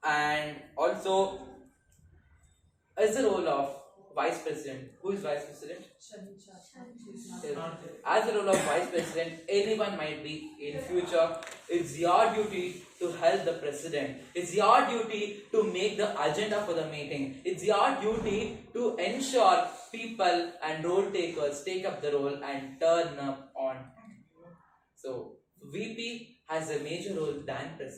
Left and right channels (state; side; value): identical; both; correlation 1.00